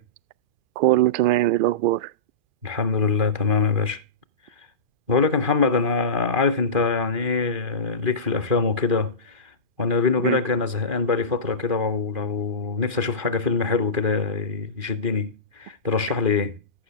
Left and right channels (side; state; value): left; late; 2.4 ms